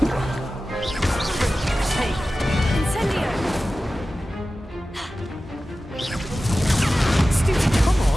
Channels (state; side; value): normal; both; correlation 0.95